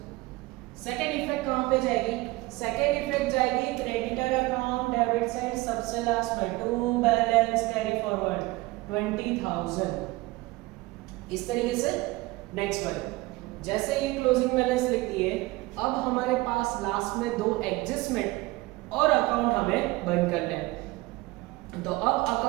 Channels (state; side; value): quieter; left; 21.0 dB